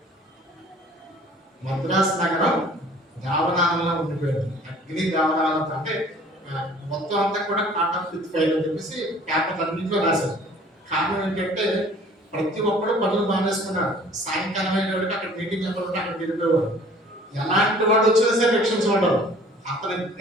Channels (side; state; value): both; normal; correlation 0.51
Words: Madras నగరం దావనాలలో ఉండిపోయింది, అగ్ని దావనాలతో. అంటే మొత్తం అంతా కూడా కాటప్ విత్ ఫైర్ అని చెప్పేసి పేపర్ అన్నింటిలో రాశారు. కారణం ఏంటంటే ప్రతి ఒక్కరు పనులు మానేసుకున్నారు. సాయంకాలం అయినప్పటికీ అక్కడ మీటింగ్ ఎవరు అక్కడ వెళ్ళిపోయేవారు. ఎలాంటి వాడు వచ్చినా సరే రక్షించబడ్డారు. అతని